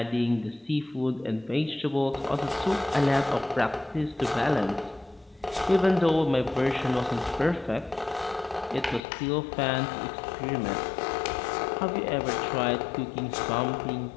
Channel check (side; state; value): right; drops out; at 9.0 s